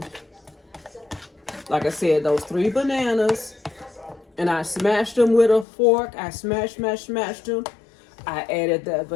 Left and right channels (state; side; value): drops out; right; at 5.7 s